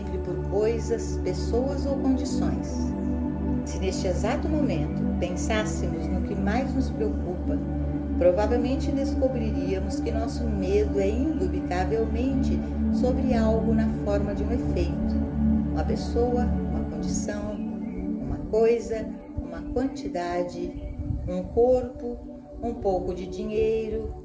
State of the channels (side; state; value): both; identical; correlation 1.00